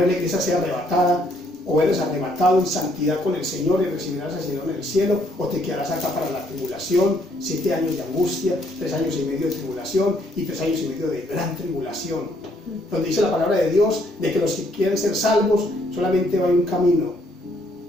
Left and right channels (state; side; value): normal; both; correlation 0.68